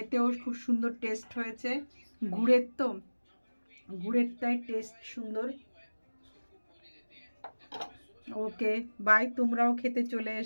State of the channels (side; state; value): both; inverted; correlation -1.00